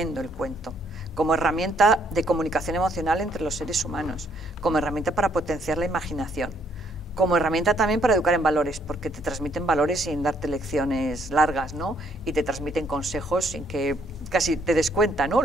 el cuento, como herramienta de comunicación emocional entre los seres humanos, como herramienta para potenciar la imaginación, como herramienta también para educar en valores, porque te transmiten valores sin darte lecciones largas, ¿no? Y te transmiten consejos sin que casi te des cuenta, ¿no?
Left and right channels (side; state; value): both; normal; correlation 0.69